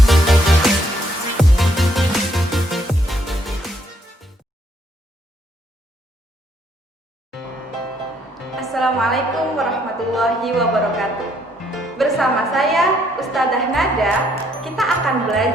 warahmatullahi wabarakatuh. Bersama saya Ustadzah Nada, kita akan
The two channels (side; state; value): both; normal; correlation 0.70